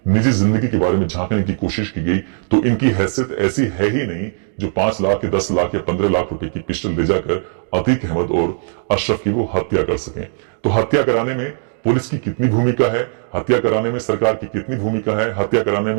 निजी जिंदगी के बारे में झांकने की कोशिश की गई तो इनकी हैसियत ऐसी है ही नहीं जो 5 लाख या 10 लाख या 15 लाख रुपए की पिस्टल ले जाकर अतीक अहमद और अशरफ की वो हत्या कर सकें। तो हत्या कराने में पुलिस की कितनी भूमिका है, हत्या कराने में सरकार की कितनी भूमिका है, हत्या कराने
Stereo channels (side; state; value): left; silent; digital silence